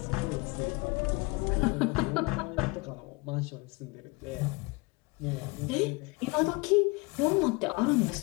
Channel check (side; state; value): right; quieter; 26.0 dB